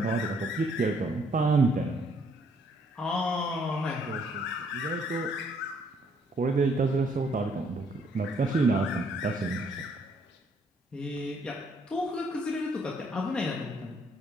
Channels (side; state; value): both; normal; correlation 0.67